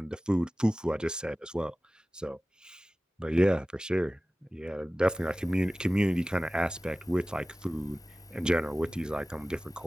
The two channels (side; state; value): both; normal; correlation 0.97